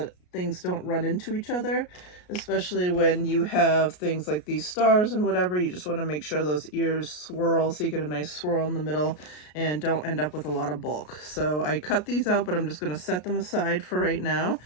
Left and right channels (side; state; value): right; late; 33 ms